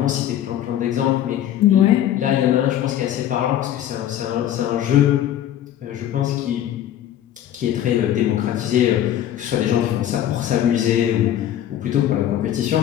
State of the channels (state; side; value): quieter; right; 11.4 dB